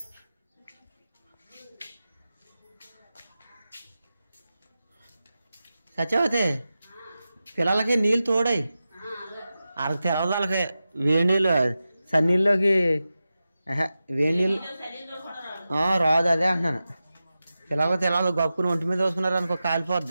సత్యవతి పిల్లలకి నీళ్ళు తోడాయి వాళ్ళకి తెలవదు వాళ్ళకి వేడి నీళ్ళు సన్నీళ్ళలోకి వేడి నీళ్ళు రాదు అదే అంటున్నాను పిల్లలకి తెలవదు గప్పుని ఒంటి మీద వేసుకున్నారు అనుకో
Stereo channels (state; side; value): inverted; both; correlation -0.93